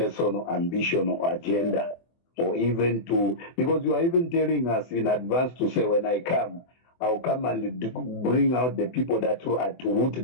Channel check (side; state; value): right; late; 24 ms